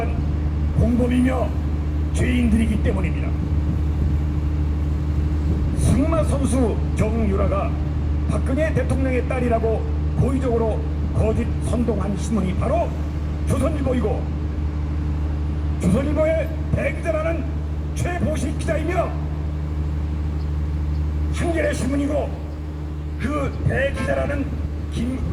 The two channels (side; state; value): both; identical; correlation 1.00